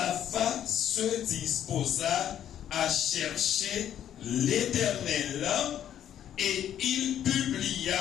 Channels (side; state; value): right; quieter; 10.5 dB